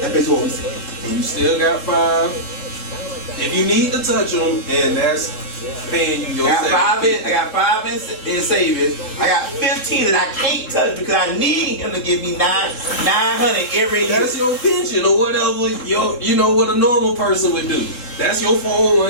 basically what we saying. And you still got 5. If you need to touch them, and that's paying you your I got 5 in savings. I got 15 that I can't touch because I need him to give me 900 every year. That's your pension or whatever. You know what a normal person would do. That's your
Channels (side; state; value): right; late; 3.7 ms